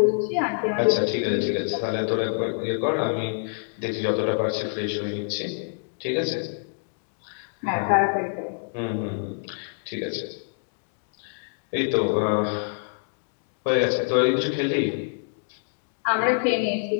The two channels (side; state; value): right; silent; digital silence